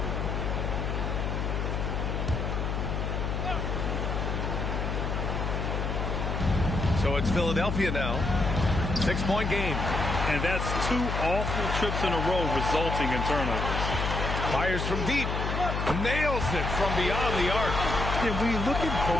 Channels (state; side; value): noise; left; hum, 1 dB below the sound